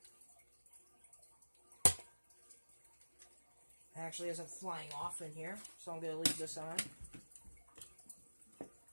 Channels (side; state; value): both; inverted; correlation -1.00